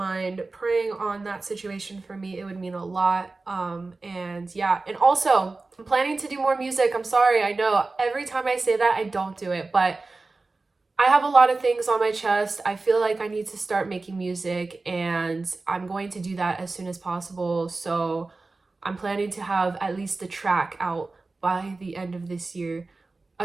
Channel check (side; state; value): left; quieter; 3.5 dB